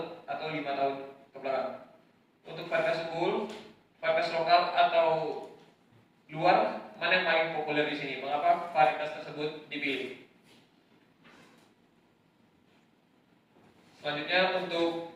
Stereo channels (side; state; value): both; identical; correlation 1.00